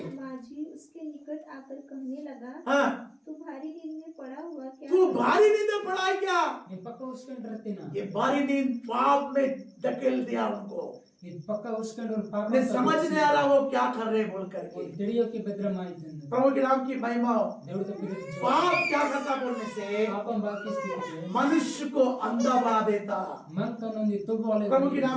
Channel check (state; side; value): identical; both; correlation 1.00